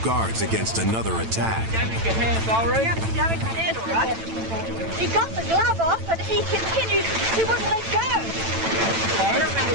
guards against another attack. Damage your hand, Valerie. Yeah, damage your hand, all right. He got the glove off, but he continued. He wouldn't let go.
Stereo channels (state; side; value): late; left; 9.0 ms